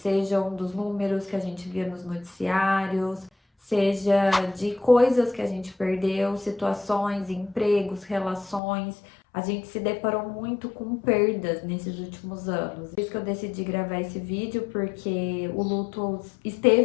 dos números que a gente via nos noticiários, seja de coisas que a gente perdeu, situações, empregos, relações. A gente se deparou muito com perdas nesses últimos anos. Por isso que eu decidi gravar esse vídeo, porque o luto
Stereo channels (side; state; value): right; drops out; at 8.6 s